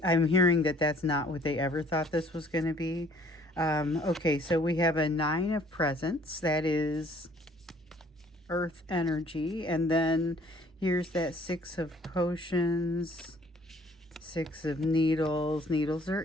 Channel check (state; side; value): normal; both; correlation 0.58